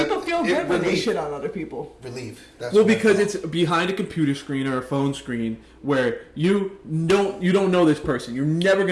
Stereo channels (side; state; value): both; identical; correlation 1.00